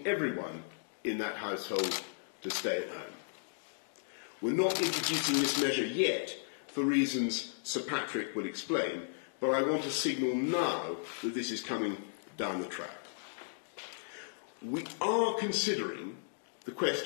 everyone in that household to stay at home. We're not introducing this measure yet for reasons Sir Patrick will explain, but I want to signal now that this is coming down the track. We are considering the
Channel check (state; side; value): silent; right; digital silence